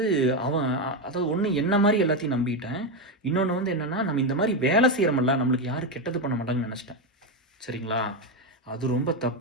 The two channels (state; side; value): normal; both; correlation 0.09